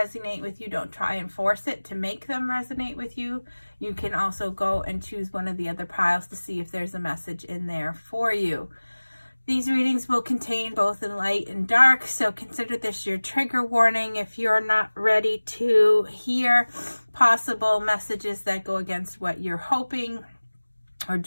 with you, don't try and force it to make them resonate with you. You can also go and choose one of the other piles to see if there's a message in there for you. These readings will contain both in light and dark, so consider this your trigger warning if you're not ready to hear possible messages that go against what you're hoping or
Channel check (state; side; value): inverted; both; correlation -1.00